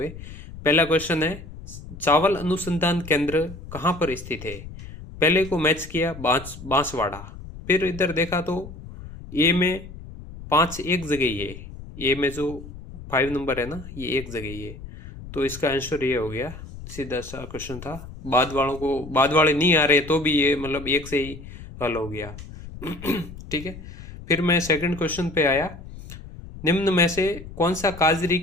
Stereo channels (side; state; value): left; noise; rumble, 14 dB below the sound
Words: पहला क्वेश्चन है, चावल अनुसंधान केंद्र कहाँ पर स्थित है। पहले को मैच किया बांसवाड़ा। फिर इधर देखा तो ए में 5 एक जगह ही है। ए में जो 5 नंबर है ना, ये एक जगह ही है। तो इसका आंसर ये हो गया। सीधा सा क्वेश्चन था। बाद वाले नहीं आ रहे तो भी ये एक से ही हल हो गया। ठीक है। फिर मैं सेकंड क्वेश्चन पे आया, निम्न में से कौन सा काजरी